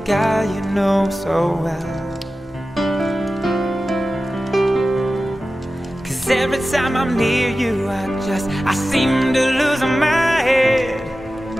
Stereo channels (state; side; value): normal; both; correlation 0.95